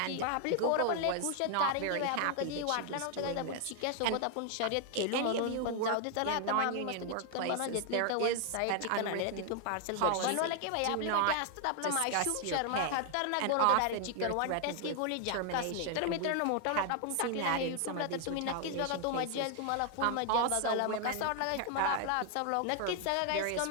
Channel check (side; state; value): both; different; correlation 0.00